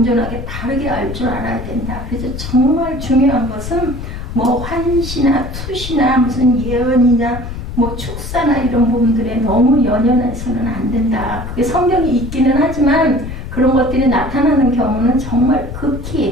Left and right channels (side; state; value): left; noise; rumble, 8 dB below the sound